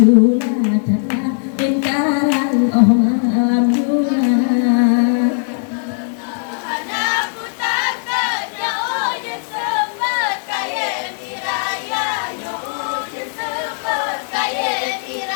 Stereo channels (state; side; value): silent; right; 67 dB below the other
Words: tala enkarang oh malam gula